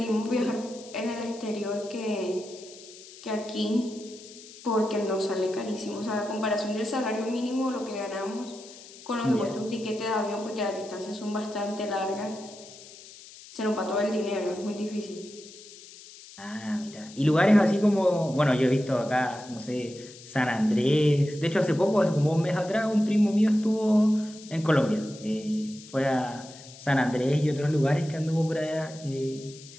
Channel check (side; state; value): left; noise; hiss, 18 dB below the sound